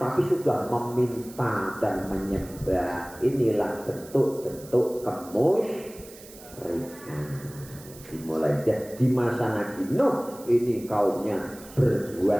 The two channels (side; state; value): right; noise; hiss, 19 dB below the sound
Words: sudah meminta dan menyembah. Inilah bentuk-bentuk kemusyrikan. Dimulai di masa Nabi Nuh ini kaumnya